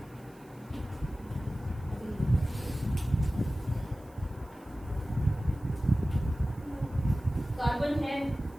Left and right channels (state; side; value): noise; right; hiss, 29 dB below the sound